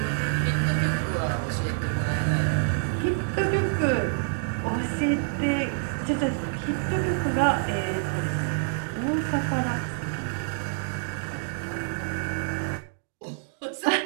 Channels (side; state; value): left; silent; digital silence